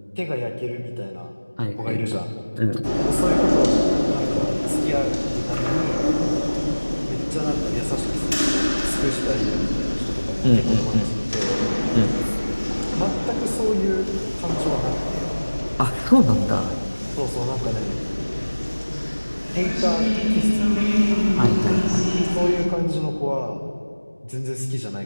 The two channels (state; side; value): inverted; both; correlation -1.00